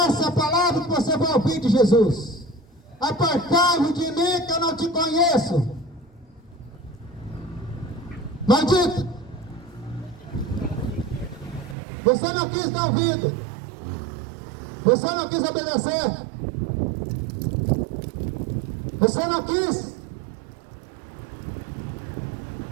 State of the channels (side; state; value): left; drops out; at 11.8 s